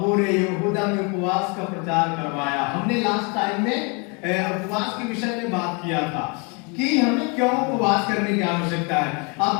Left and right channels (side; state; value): right; quieter; 32.5 dB